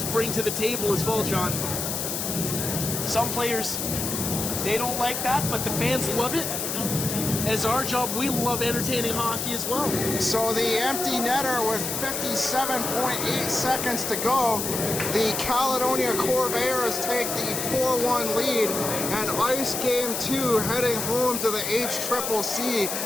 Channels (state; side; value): noise; left; hiss, 3 dB below the sound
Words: bring to the table as well, John. Some players, they don't like that, but the fans love it. As our job, we love entertaining hockey as well. So the empty netter with 57.8 seconds to go. The Caledonia Corvairs take the 4-1 lead and ice game 2 heading home to the HCCC